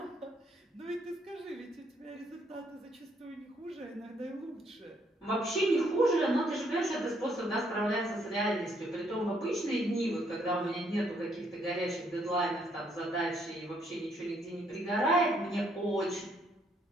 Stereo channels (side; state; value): both; normal; correlation 0.70